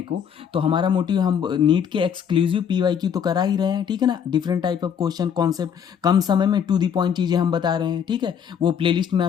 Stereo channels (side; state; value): right; quieter; 7.9 dB